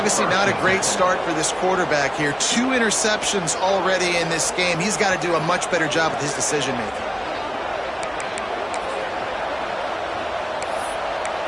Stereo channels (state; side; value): identical; both; correlation 1.00